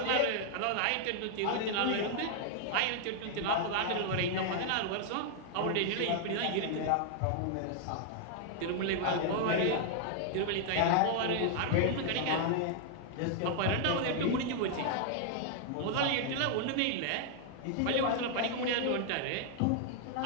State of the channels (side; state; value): both; different; correlation 0.00